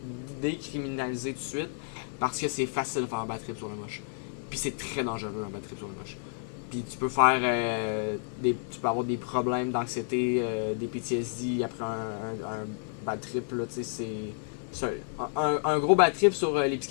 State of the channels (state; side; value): silent; right; digital silence